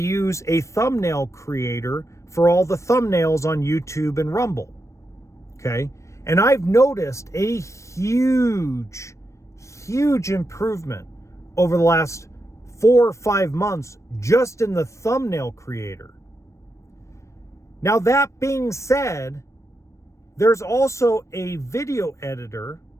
a thumbnail creator for all the thumbnails on YouTube and Rumble. Okay? And I've noticed a huge improvement over the last 4 or 5 months just in the thumbnail creator. Now, that being said, there's also a video editor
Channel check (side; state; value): right; late; 0.15 ms